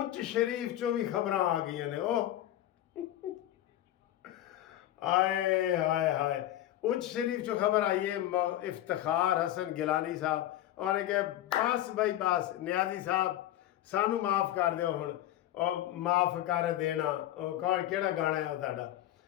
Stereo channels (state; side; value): quieter; right; 13.2 dB